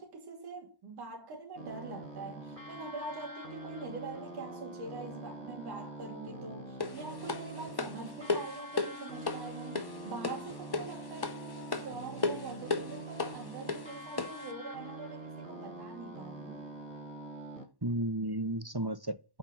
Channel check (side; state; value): left; late; 1.1 ms